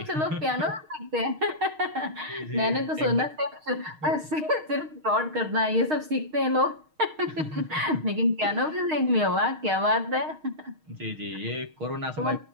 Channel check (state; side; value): late; left; 6.4 ms